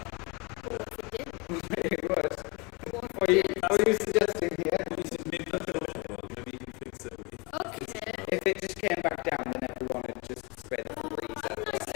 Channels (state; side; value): quieter; right; 28.6 dB